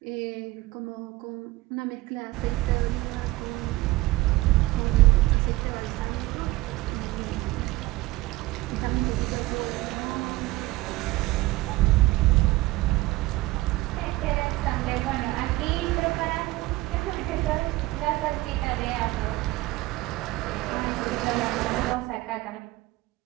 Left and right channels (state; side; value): quieter; left; 19.4 dB